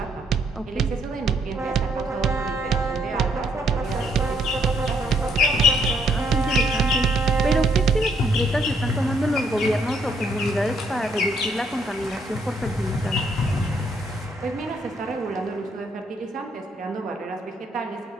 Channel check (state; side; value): normal; both; correlation 0.70